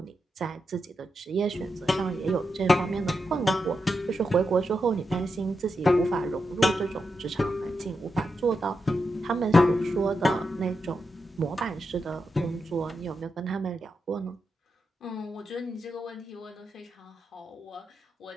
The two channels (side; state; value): both; normal; correlation 0.86